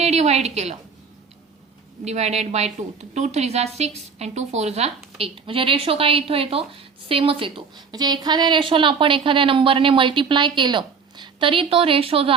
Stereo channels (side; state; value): left; quieter; 5.6 dB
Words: डिवाइड केलं, डिवायडेड बाय 2, 2 3 जा 6 आणि 2 4 जा 8. म्हणजे रेशो काय इथं येतो, सेमच येतो. म्हणजे एखाद्या रेशोला आपण एखाद्या नंबरने मल्टिप्लाय केलं तरी तो रेशो जो